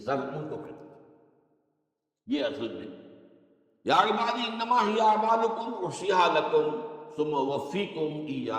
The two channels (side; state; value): both; identical; correlation 1.00